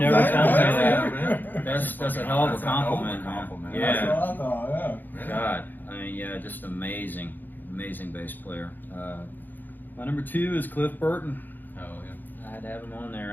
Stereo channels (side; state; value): right; late; 0.088 ms